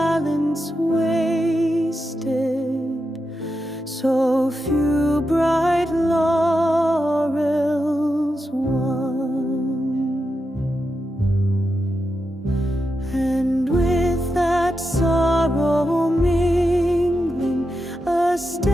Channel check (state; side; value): normal; both; correlation 0.88